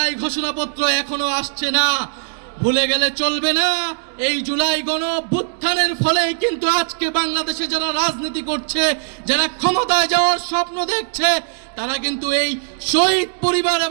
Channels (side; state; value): left; silent; digital silence